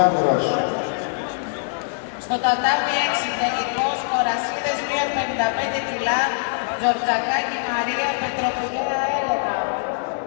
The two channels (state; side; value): silent; right; digital silence